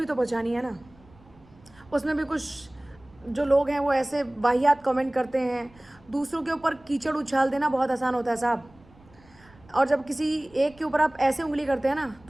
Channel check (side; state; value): right; noise; rumble, 27 dB below the sound